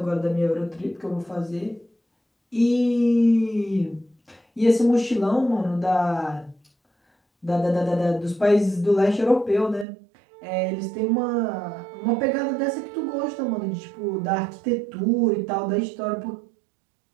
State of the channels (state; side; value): drops out; left; at 9.9 s